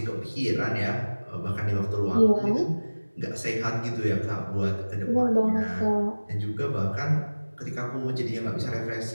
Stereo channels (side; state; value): both; inverted; correlation -1.00